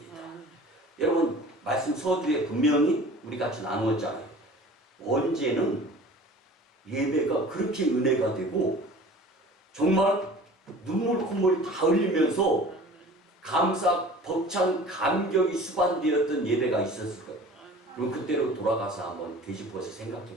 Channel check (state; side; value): normal; both; correlation 0.44